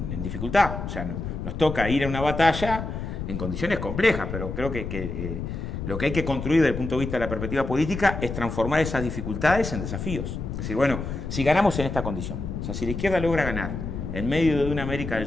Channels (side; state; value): left; noise; rumble, 5 dB below the sound